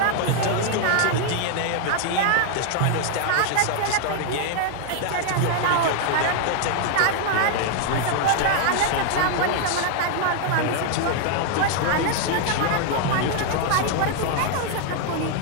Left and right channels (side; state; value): both; different; correlation 0.00